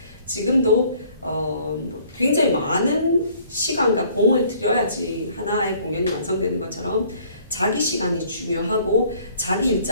지금도 굉장히 많은 시간과 공을 들여야지 하나의 공연이 완성되는 것처럼 자기 시간이 중요하고 자기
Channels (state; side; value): inverted; both; correlation -0.58